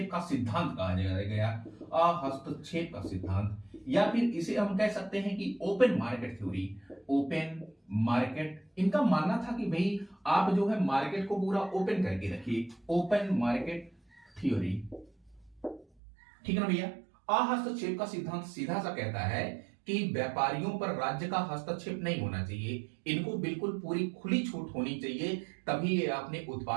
का सिद्धांत कहा गया। अहस्तक्षेप का सिद्धांत, या फिर इसे हम कह सकते हैं कि open market theory. Open market, इनका मानना था कि भाई आप जो है मार्केट को पूरा ओपन करके रखिए, ओपन मार्केट थ्योरी। ठीक है ना भैया? अहस्तक्षेप का सिद्धांत सीधा सा कहता है कि व्यापारियों पर राज्य का हस्तक्षेप नहीं होना चाहिए, इनको बिल्कुल पूरी खुली छूट होनी चाहिए, तभी ये अपने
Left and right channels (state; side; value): drops out; left; at 15.9 s